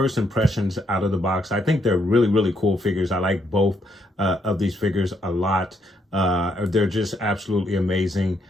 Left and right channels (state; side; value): normal; both; correlation 0.75